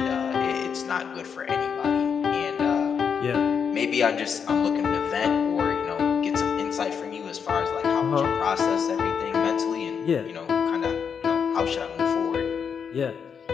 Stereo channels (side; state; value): right; quieter; 6.8 dB